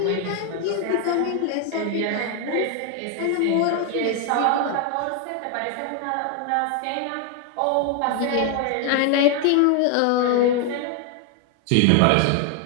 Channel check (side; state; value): both; different; correlation 0.01